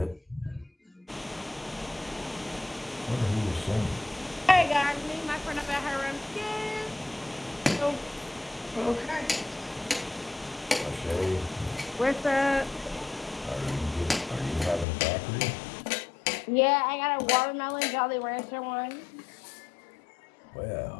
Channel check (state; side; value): drops out; right; at 14.9 s